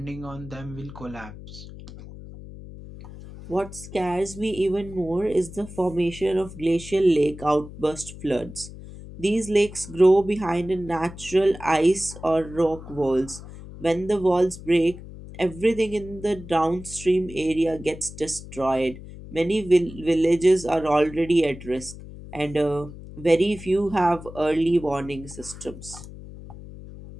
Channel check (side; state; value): left; noise; hum, 14 dB below the sound